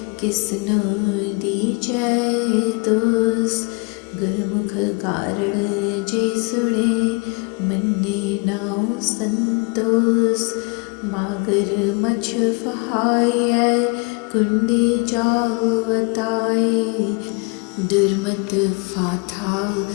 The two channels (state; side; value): quieter; right; 32.0 dB